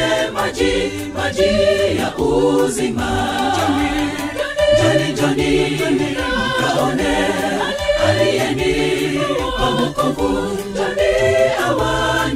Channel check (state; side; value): identical; both; correlation 1.00